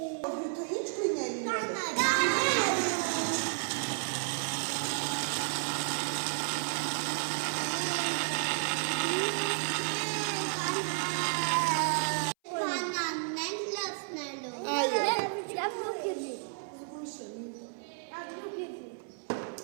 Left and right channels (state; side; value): silent; left; 56 dB below the other